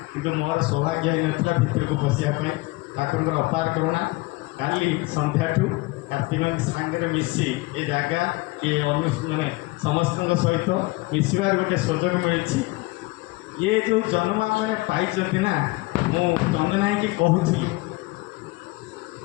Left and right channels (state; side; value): quieter; right; 22.8 dB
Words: किंतु मोर सौभाग्य ही नाला भितर को पशियापाई ठाकुर अपार करुणा काली संध्या कार्तिक सांगे मिसी ए जगह किए माने समस्त सहित मिसबार गोटे सुजोग मिली ये जो जन्म मैंने पाई ना मु चंदना कि कहूली